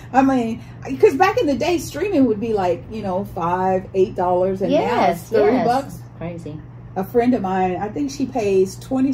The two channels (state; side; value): identical; both; correlation 1.00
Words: I mean, because back in the day, streaming would be like, you know, $5, $8, and now it's $30. Crazy. A friend of mine, I think she pays